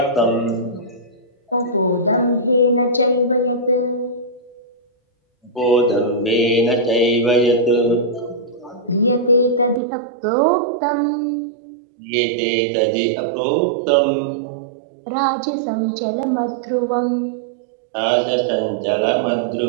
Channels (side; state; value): left; drops out; at 9.8 s